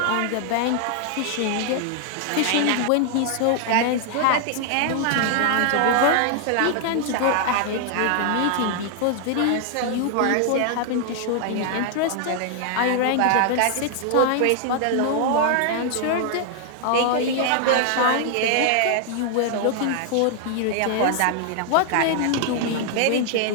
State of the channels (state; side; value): different; both; correlation 0.00